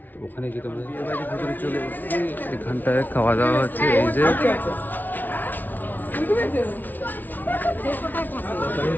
তো ওখানে গিয়ে তোমাদের বিয়ে বাড়ির ভিতরে চলে এসেছি। এখানটায় খাওয়া দাওয়া হচ্ছে, এই যে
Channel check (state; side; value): late; right; 0.083 ms